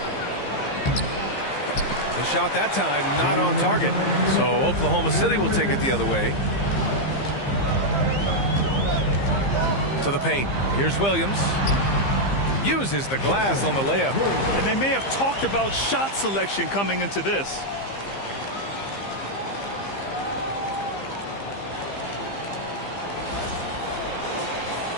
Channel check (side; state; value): right; late; 15 ms